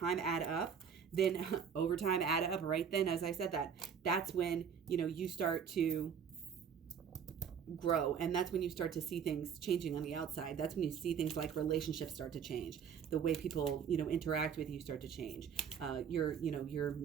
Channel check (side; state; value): left; quieter; 7.4 dB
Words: add up, right then, as I said, that's when you start to grow, and that's when you start to see things changing on the outside. That's when you see things like relationships start to change, the way people interact with you start to change, your